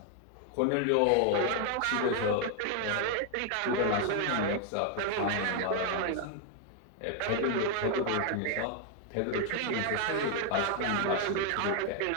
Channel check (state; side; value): different; both; correlation 0.01